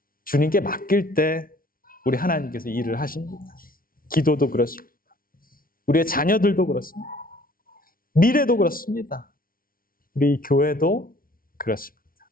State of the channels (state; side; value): late; right; 0.42 ms